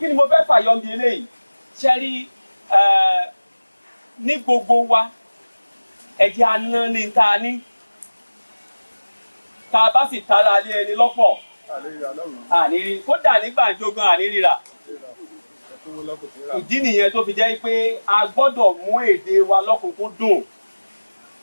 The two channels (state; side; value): inverted; both; correlation -1.00